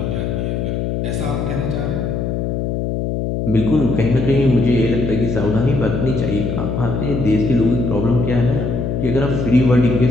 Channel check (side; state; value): left; noise; hum, 1 dB below the sound